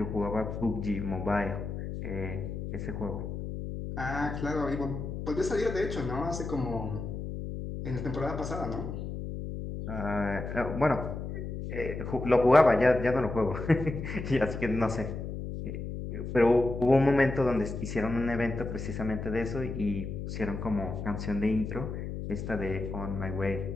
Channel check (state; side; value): noise; left; hum, 6 dB below the sound